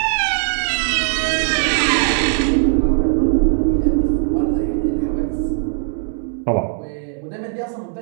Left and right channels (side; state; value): left; silent; digital silence